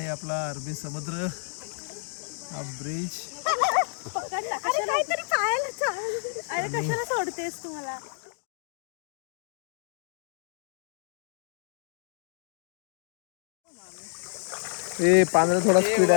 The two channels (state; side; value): silent; right; digital silence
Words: आपला अरबी समुद्र, हा ब्रिज. सोडतेस तुम्हाला. हे पाण्याला थोडा स्पीड